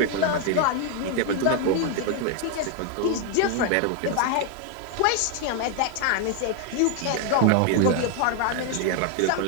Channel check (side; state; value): both; different; correlation 0.00